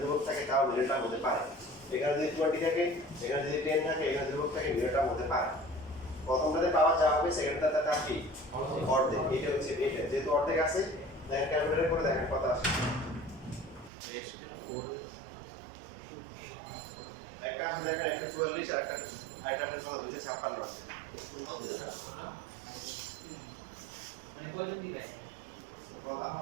থাকে, তাও নির্ণয়টা হতে পারে। এখানে যদি 20 থাকে, এখানে যদি 10 থাকে, এখানে ধ্রুবক থাকে, নির্ণয়টা হতে পারে। প্রথমটাতে পাওয়ার যা হবে, সেকেন্ডটাতে তার কি অর্ধেক। এটা হচ্ছে এটা, যেহেতু অর্ধেক আছে দেখেন ক্যালকুলেটর করে দেখেন কত আসে। একটা আছে দেখেন 144, আরেকটা আছে 256 আছে।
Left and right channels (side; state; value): left; drops out; at 13.9 s